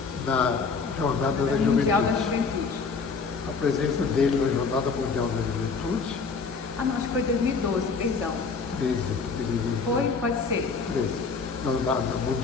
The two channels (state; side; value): quieter; right; 4.8 dB